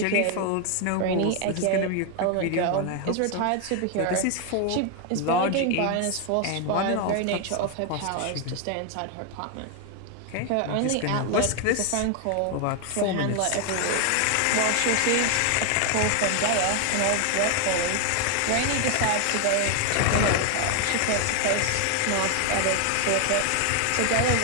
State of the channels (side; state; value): both; different; correlation 0.00